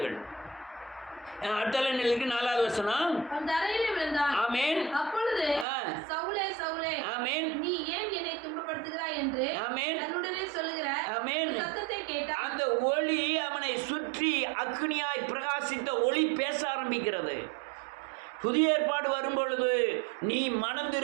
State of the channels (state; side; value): drops out; left; at 5.7 s